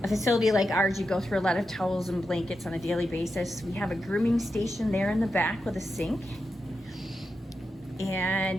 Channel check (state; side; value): normal; both; correlation 0.88